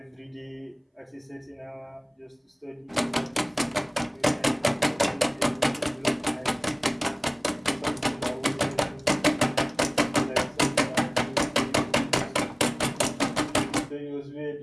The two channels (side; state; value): both; identical; correlation 1.00